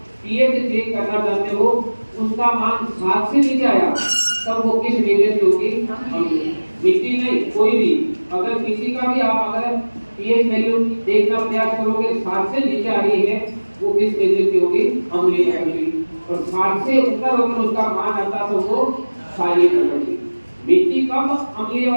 पीएच चेक करना चाहते हो, उसका मान 7 से नीचे आया तब वो किस नेचर की होगी? मिट्टी नहीं, कोई भी। अगर किसी का भी आप अगर पीएच वैल्यू देखना प्रयास करोगे 7 से नीचे आ रही है, वो किस नेचर की होगी? अम्लीय प्रकृति। और 7 से ऊपर अगर उसका मान आता तो वो क्षारीय प्रकृति। मिट्टी कब अम्लीय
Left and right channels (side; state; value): both; inverted; correlation -1.00